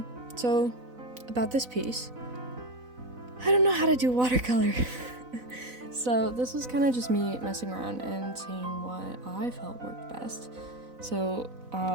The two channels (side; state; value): left; late; 4.0 ms